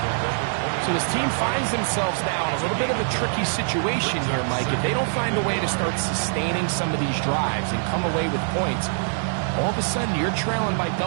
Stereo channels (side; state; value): left; silent; digital silence